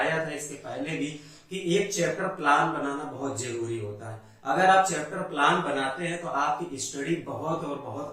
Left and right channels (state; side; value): identical; both; correlation 1.00